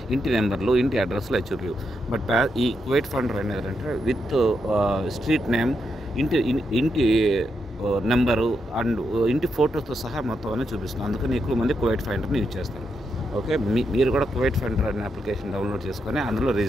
ఇంటి నెంబర్లు, ఇంటి అడ్రస్లు అది చూపించవు. బట్ ఈ కువైట్ ఫైండర్ అనేది అంటే విత్ స్ట్రీట్ నేమ్, ఇంటి నెంబరు అండ్ ఇంటి ఫోటోతో సహా మొత్తం అన్నీ చూపిస్తుంది. అందుకని ఎక్కువ మంది కువైట్ ఫైండర్ని యూజ్ చేస్తారు. ఓకే, మీరు కూడా కువైట్ ఫైండర్ అనే అప్లికేషన్ డౌన్లోడ్ చేసుకొని అందులో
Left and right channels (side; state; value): both; normal; correlation 0.83